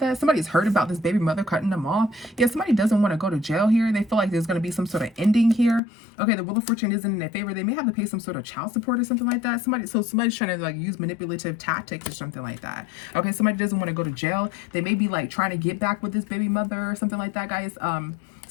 Somebody's hurt about this baby mother cutting them off. Yeah, somebody doesn't want to go to jail here. They feel like there's going to be some sort of ending here. Okay, the Wheel of Fortune isn't in their favor. They may have to pay some sort of child support or something like that. Somebody's trying to use manipulative tactics or something like that. Okay, somebody doesn't want to go to jail. They may be trying to get back with this baby mother or something like that, guys.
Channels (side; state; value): right; drops out; at 5.8 s